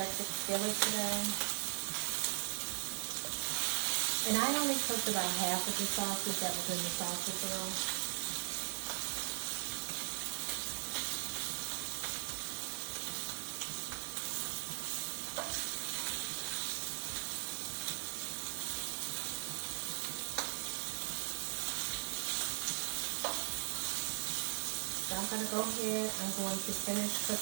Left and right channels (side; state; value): left; silent; digital silence